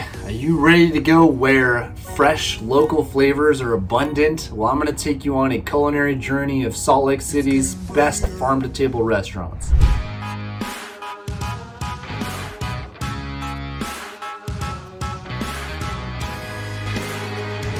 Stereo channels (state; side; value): identical; both; correlation 1.00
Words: are you ready to go where fresh local flavors are abundant? Well, I'm going to take you on a culinary journey of Salt Lake City's best farm-to-table restaurants.